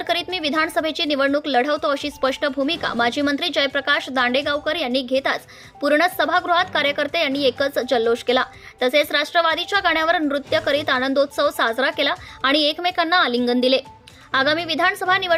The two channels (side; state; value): both; identical; correlation 1.00